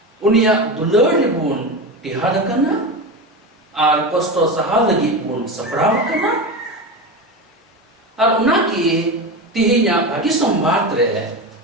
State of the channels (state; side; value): normal; both; correlation 0.22